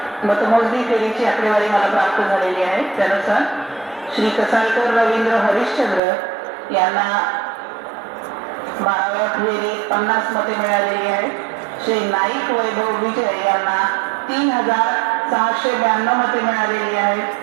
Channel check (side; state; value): left; drops out; at 6.0 s